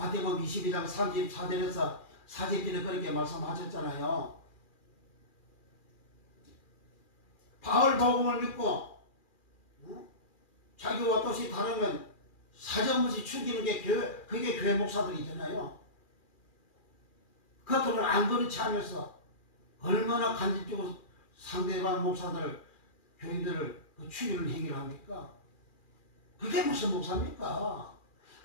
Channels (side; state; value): right; late; 2.4 ms